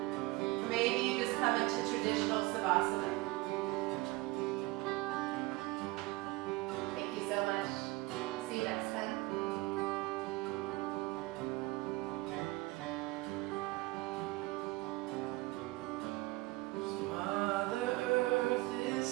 Or maybe you just come into traditional Savasana. Thank you so much. See you next time.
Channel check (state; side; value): quieter; left; 21.0 dB